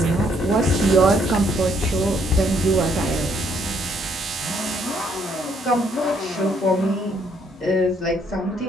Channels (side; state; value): both; normal; correlation 0.69